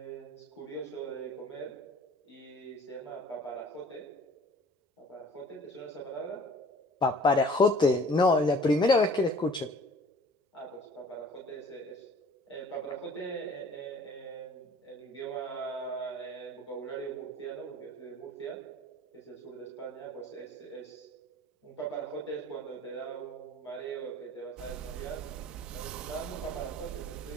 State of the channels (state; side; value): normal; both; correlation 0.50